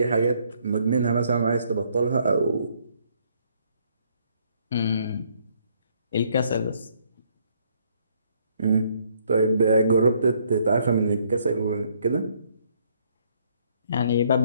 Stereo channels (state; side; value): inverted; both; correlation -0.67